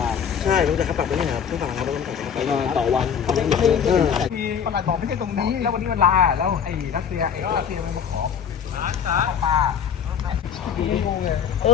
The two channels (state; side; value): quieter; right; 7.6 dB